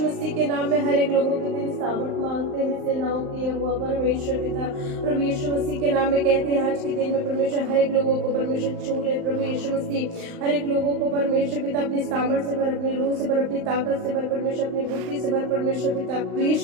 मसीह के नाम में हर एक लोगों को तेरी सामर्थ मांगते हैं, सेनाओं की यहोवा परमेश्वर पिता। प्रभु यीशु मसीह के नाम में कहते हैं आज के दिन में परमेश्वर हर एक लोगों को परमेश्वर छू ले। प्रभु यीशु मसीह हर एक लोगों को परमेश्वर पिता अपनी सामर्थ से भर, अपनी रूह से भर, अपनी ताकत से भर परमेश्वर, अपनी बुद्धि से भर परमेश्वर पिता। प्रभु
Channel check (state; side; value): late; left; 39 ms